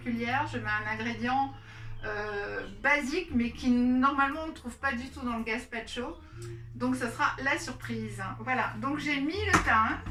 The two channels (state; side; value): identical; both; correlation 1.00